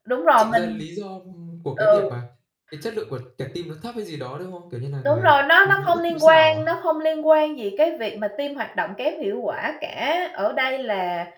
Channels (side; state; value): both; identical; correlation 1.00